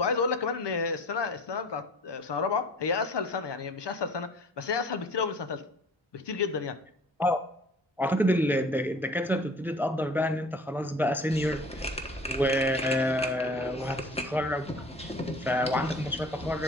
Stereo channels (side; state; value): both; normal; correlation 0.47